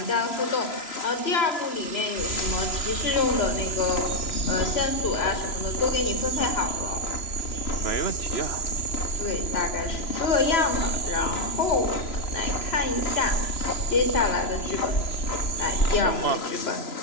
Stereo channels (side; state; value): right; late; 3.0 ms